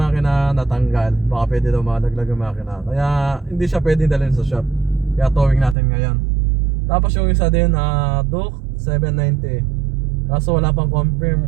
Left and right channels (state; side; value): drops out; left; at 5.8 s